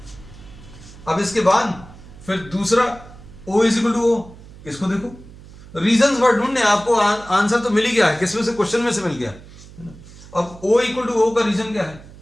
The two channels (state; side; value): noise; right; hum, 19 dB below the sound